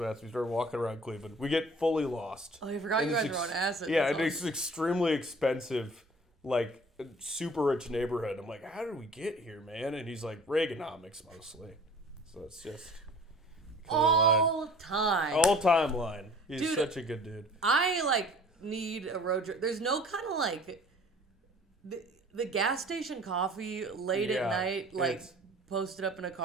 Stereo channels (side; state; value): both; normal; correlation 0.48